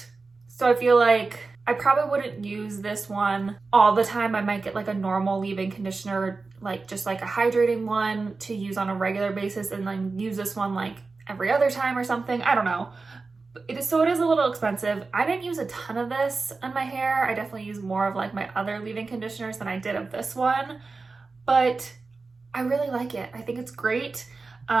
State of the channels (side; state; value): left; quieter; 4.0 dB